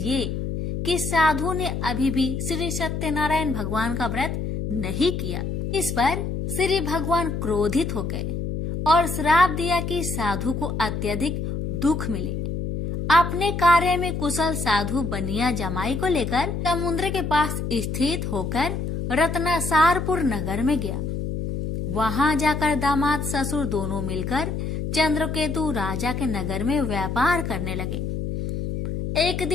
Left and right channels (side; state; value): left; noise; hum, 3 dB below the sound